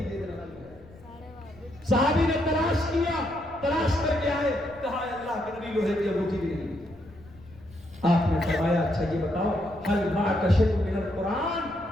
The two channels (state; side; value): noise; left; rumble, 23 dB below the sound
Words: دے دینا۔ صحابی نے تلاش کیا، تلاش کر کے آئے، کہا ہے اللہ کے نبی لوہے کی انگوٹھی بھی نہیں۔ آپ نے فرمایا اچھا یہ بتاؤ هل معك شيء من القرآن،